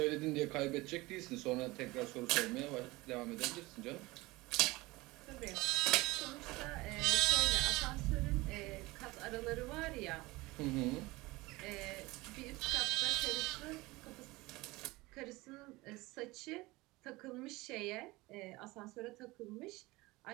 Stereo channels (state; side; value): quieter; left; 21.4 dB